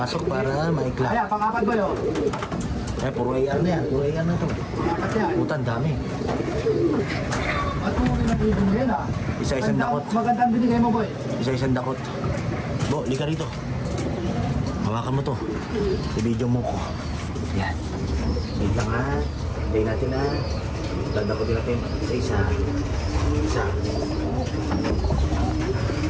para ma-clock. Ayan, pang-apat, boy, oh. Ayan, puro AR na yan. Puro AR na to. Pang-apat yan. Putan, dami. At kung pinag-ibig mo yan, ah. Isa-isang dakot. Magandang binigay mo, boy. Isa-isang dakot. Bo, lika rito. Hawakan mo to. I-video mo ko. Yan. Wait lang ha. Hintayin natin ha. Landakotin natin. Isa-isa. Isa.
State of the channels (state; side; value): identical; both; correlation 1.00